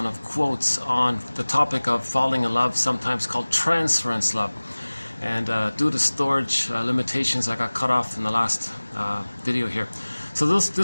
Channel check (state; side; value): inverted; both; correlation -1.00